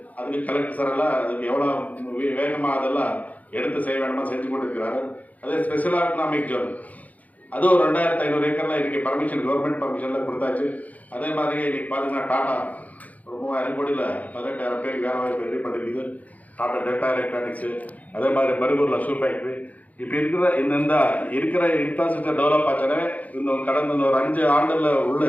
அதுக்கு கலெக்டர் சார் எல்லாம் அதுக்கு எவ்வளோ வேகமாக அதெல்லாம் எடுத்து செய்ய வேணுமா செஞ்சு கொண்டிருக்கிறாரு. அதே ஸ்பெஷல் எக்கனாமிக் ஜோன் அதுவும் 2500 ஏக்கரில் இன்னைக்கு கவர்மெண்ட் பர்மிஷன்லாம் கொடுத்தாச்சு. அதே மாதிரி இன்னைக்கு பார்த்தீங்கன்னா டாடா ஒரு 3000 கோடியில் 18,000 பேருக்கு வேலை வாய்ப்பு ரெடி பண்ணிருக்குது. டாடா டேட்டா எலக்ட்ரானிக்ஸு, அதே மாதிரி பருகூரில் ஷூ ஃபேக்ட்ரி. இப்போ இருக்கிற இன்ஃப்ராஸ்ட்ரக்சர் டெவலப் ஆச்சானே இன்னும் கடந்த ஒரு 5 ஆண்டில் உள்ள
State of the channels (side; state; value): right; late; 0.075 ms